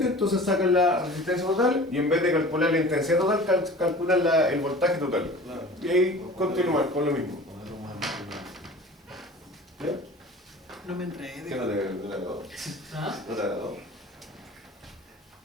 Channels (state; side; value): normal; both; correlation 0.42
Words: entonces sacan la resistencia total y en vez de calcular la intensidad total, calculan el voltaje total. Y ahí continúan con lo mismo. ¿Ya? No me ¿Qué enredé. no te agradó? ¿Ah? ¿No te agradó?